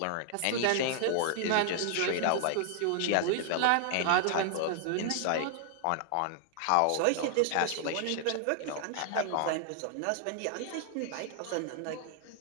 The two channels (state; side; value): different; both; correlation 0.00